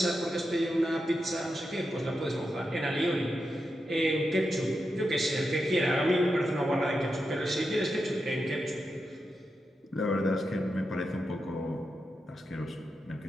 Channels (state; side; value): normal; both; correlation 0.87